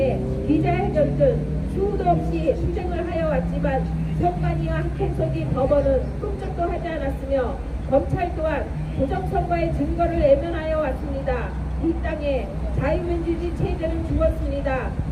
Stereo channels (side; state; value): both; identical; correlation 1.00